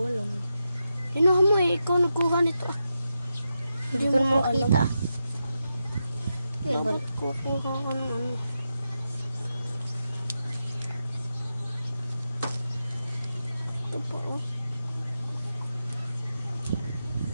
alam. Inuha mo eh, ikaw nagkuha nito. Hindi ko naman kita. Bakit kukuha ka ng ano? Ito po oh.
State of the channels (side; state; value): both; inverted; correlation -0.88